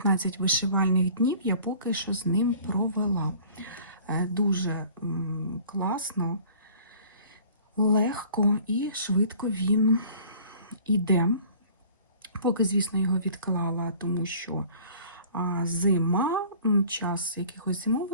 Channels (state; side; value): inverted; both; correlation -0.49